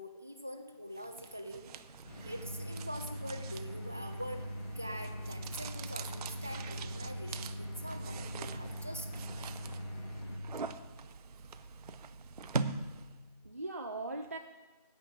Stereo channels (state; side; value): inverted; both; correlation -0.69